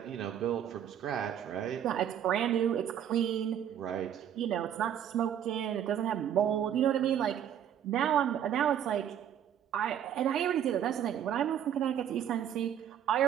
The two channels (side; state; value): left; quieter; 9.7 dB